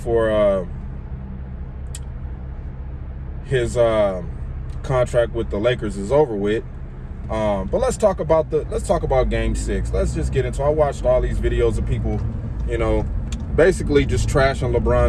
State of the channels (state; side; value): identical; both; correlation 1.00